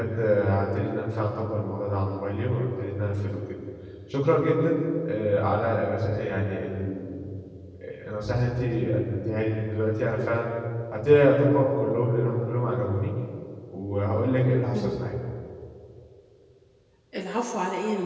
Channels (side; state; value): both; identical; correlation 1.00